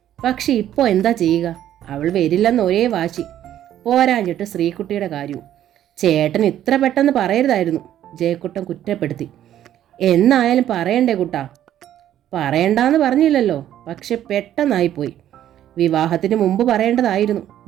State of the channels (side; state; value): left; quieter; 11.5 dB